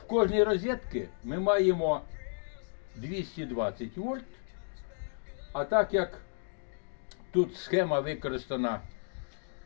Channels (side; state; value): right; silent; digital silence